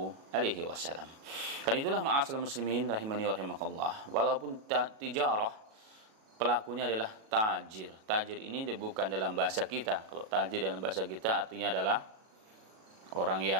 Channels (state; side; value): late; left; 37 ms